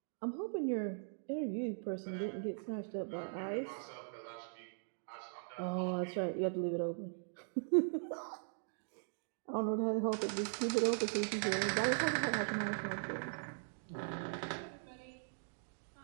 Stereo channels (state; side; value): silent; left; digital silence